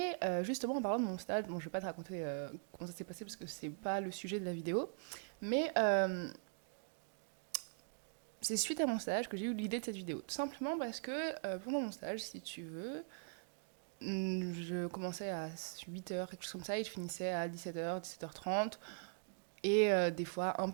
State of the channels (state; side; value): silent; left; digital silence